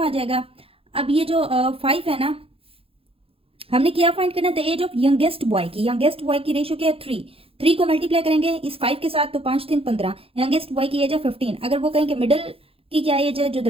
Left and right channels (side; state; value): left; late; 0.27 ms